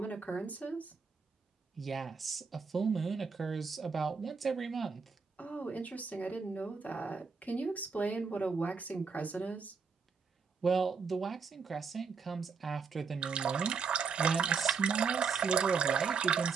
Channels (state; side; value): quieter; left; 5.4 dB